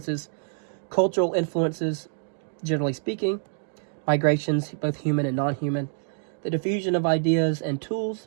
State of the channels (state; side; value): silent; left; 61 dB below the other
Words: cultural influences, generally speaking, migrations, both human and non-human, the diffusion of ideas and